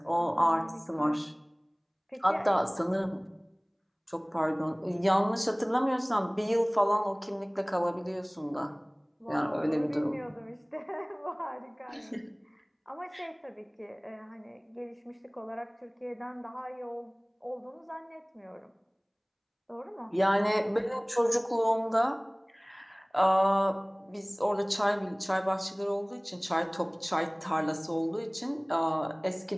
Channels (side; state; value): both; identical; correlation 1.00